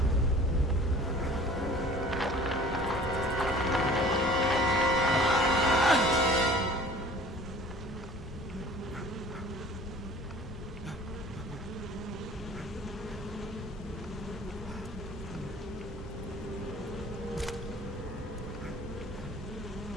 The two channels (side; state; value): both; normal; correlation 0.47